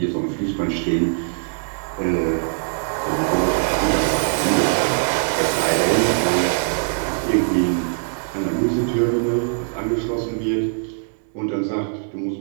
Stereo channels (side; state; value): left; silent; 65 dB below the other